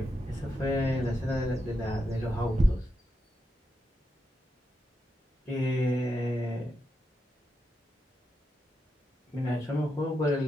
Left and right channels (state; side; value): normal; both; correlation 0.85